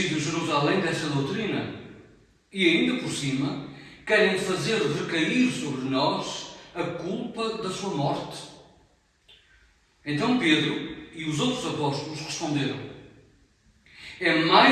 Jerusalém dessa doutrina e ainda por cima querem fazer recair sobre nós a culpa da sua morte. Então Pedro e os outros apóstolos responderam: é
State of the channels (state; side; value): identical; both; correlation 1.00